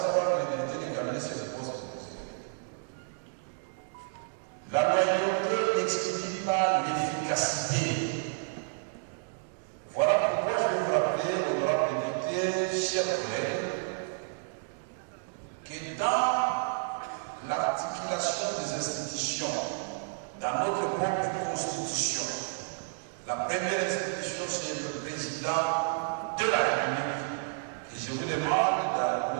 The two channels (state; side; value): silent; left; digital silence